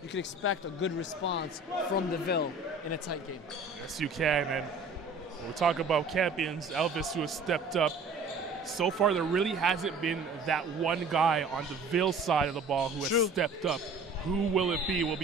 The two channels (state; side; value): quieter; left; 3.5 dB